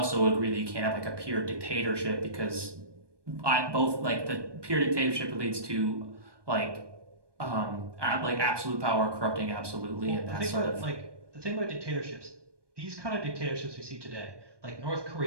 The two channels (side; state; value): left; late; 1.2 ms